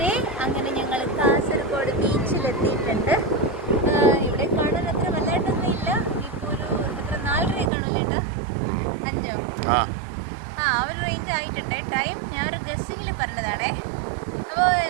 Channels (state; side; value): drops out; left; at 7.7 s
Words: അങ്ങനെ ഞങ്ങൾ കാസർഗോഡ് ബീച്ചിലെത്തിയിട്ടുണ്ട്. ഇവിടെ കാണാൻ അത്ര വല്ലായിട്ടൊന്നും ഇല്ല. ഇപ്പോൾ ഒരു എത്ര 4:30 കാണുമല്ലേ ഏട്ടാ? 5 ഒരു റേഞ്ച് ആയിട്ടുണ്ട്. ടൈം ഞാൻ ഒരു ഗസ്സിങ്ങിൽ പറഞ്ഞതാണേ. അപ്പോൾ